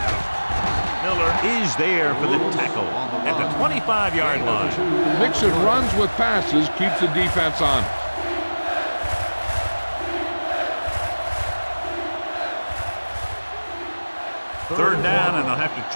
Miller is there for the tackle at the 25-yard line. Mixing runs with passes keeps the defense on. Third down, and they'll have to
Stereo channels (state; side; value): inverted; both; correlation -1.00